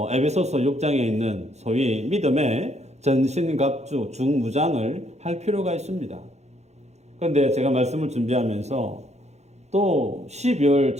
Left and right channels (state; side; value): late; left; 0.32 ms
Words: 에베소서 6장에 있는 소위 믿음의 전신갑주 중무장을 할 필요가 있습니다. 그런데 제가 말씀을 준비하면서 또 12월